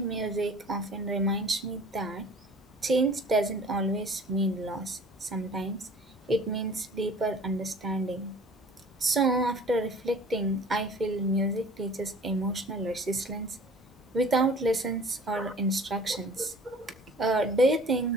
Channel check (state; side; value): normal; both; correlation 0.48